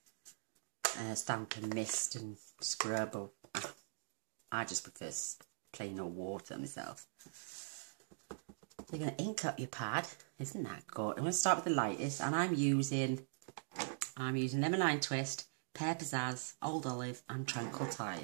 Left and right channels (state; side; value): silent; left; digital silence